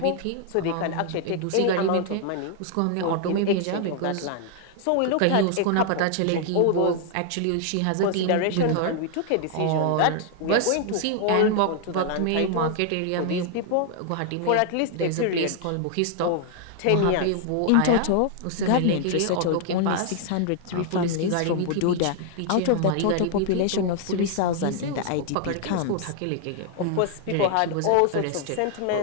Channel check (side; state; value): both; different; correlation 0.00